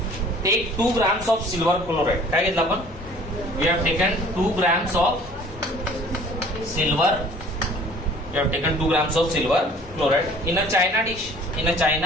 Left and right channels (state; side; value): normal; both; correlation 0.51